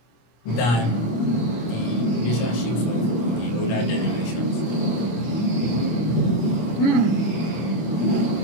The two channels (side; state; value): right; late; 25 ms